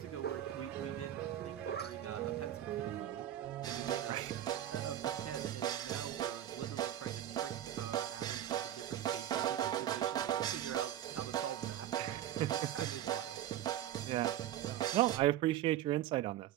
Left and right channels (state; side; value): quieter; left; 11.8 dB